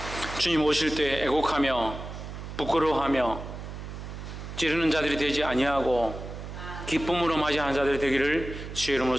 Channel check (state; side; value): noise; right; hum, 9 dB below the sound